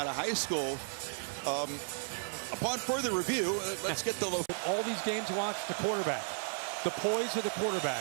of high school. Upon further review, let's get the local. All these games, watch the quarterback. The poise of the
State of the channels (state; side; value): silent; left; 55 dB below the other